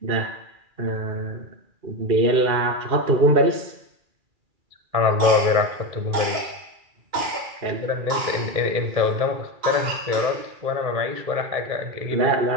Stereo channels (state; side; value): late; left; 2.3 ms